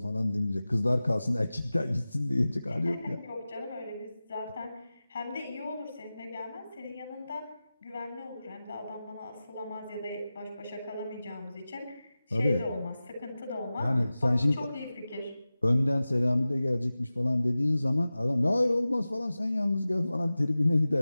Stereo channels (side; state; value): both; inverted; correlation -0.96